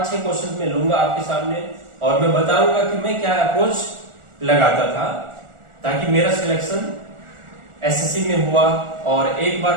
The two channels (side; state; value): left; late; 1.4 ms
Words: क्वेश्चन मैं लूंगा आपके सामने और मैं बताऊंगा कि मैं क्या अप्रोच लगाता था ताकि मेरा सिलेक्शन एसएससी में हुआ, और एक बार